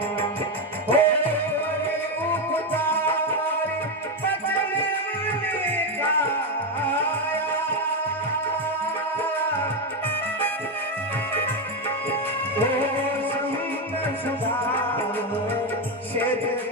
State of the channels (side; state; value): both; normal; correlation 0.09